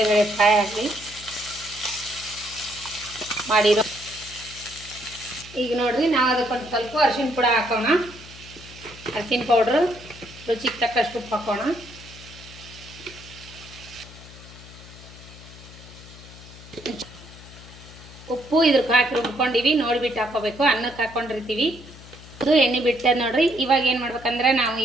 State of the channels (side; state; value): left; noise; hum, 18 dB below the sound